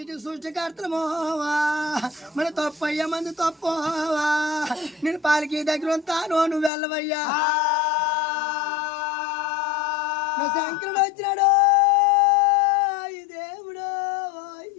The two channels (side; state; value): right; drops out; at 6.7 s